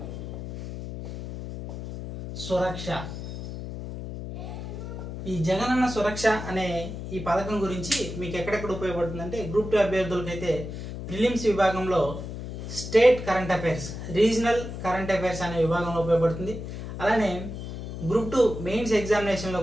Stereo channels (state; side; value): noise; left; hum, 8 dB below the sound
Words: సురక్ష. ఈ జగనన్న సురక్ష అనే ఈ పథకం గురించి మీకు ఎక్కడెక్కడ ఉపయోగపడుతుందంటే గ్రూప్ 2 అభ్యర్థులకైతే ప్రిలిమ్స్ విభాగంలో state current affairs, regional current affairs అనే విభాగంలో ఉపయోగపడుతుంది. అలానే గ్రూప్ 2 మెయిన్స్